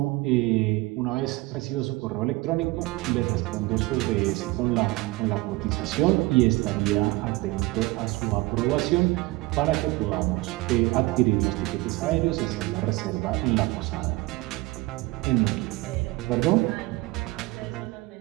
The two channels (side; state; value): left; quieter; 21.3 dB